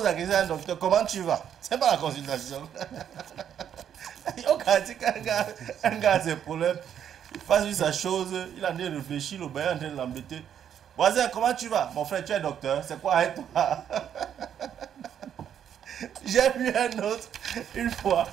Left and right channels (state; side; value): quieter; left; 9.1 dB